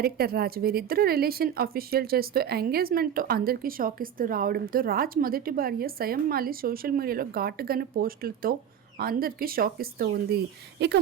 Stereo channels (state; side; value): quieter; left; 9.2 dB